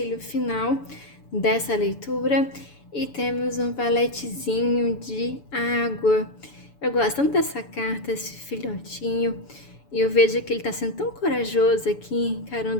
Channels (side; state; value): right; late; 7.0 ms